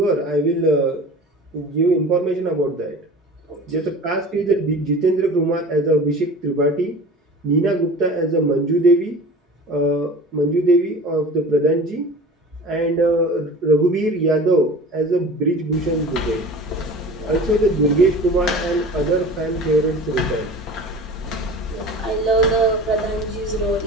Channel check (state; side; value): normal; both; correlation 0.39